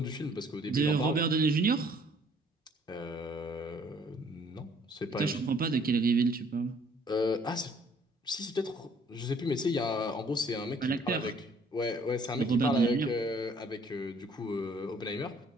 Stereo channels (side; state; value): both; normal; correlation 0.60